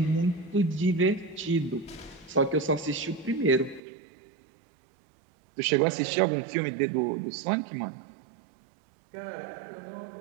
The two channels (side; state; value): left; drops out; at 3.8 s